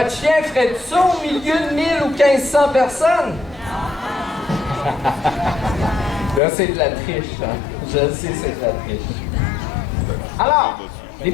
chien ferait ça au milieu de 1000 ou 1500 personnes? Là, c'est de la triche, hein? Je le sais, c'est de la triche. Alors, les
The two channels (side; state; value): right; drops out; at 6.4 s